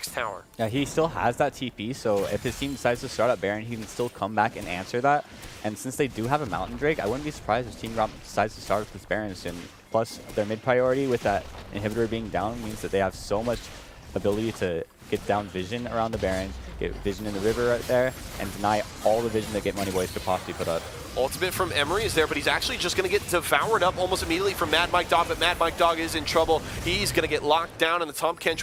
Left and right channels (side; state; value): both; identical; correlation 1.00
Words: tower. Yeah, he still has that TP, so if his team decides to start up Baron, he can still come back and answer that. And since they do have a Mountain Drake, I wouldn't be surprised if Team Gromp decides to start with this Baron soon. Plus, their mid priority with that inhibitor being down means that they have so much ability to get down vision around the Baron, get vision in the river right there, and deny all the vision that Get Money Boys could possibly put up. Ultimate from Emery is there, but he's actually just going to get devoured up almost immediately from Mad Mike Dog, but Mad Mike Dog is in trouble. He's going to get locked down, and the Tom